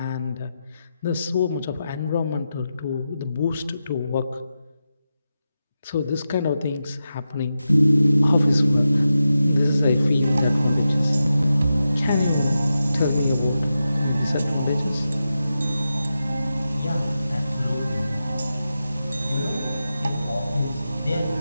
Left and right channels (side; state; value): both; inverted; correlation -0.90